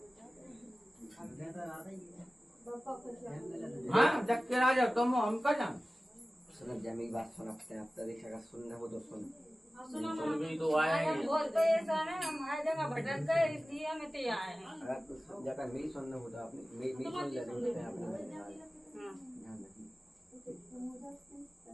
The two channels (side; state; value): both; normal; correlation 0.96